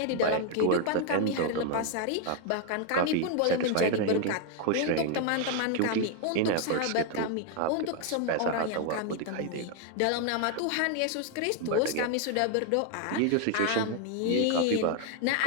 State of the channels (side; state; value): both; different; correlation 0.01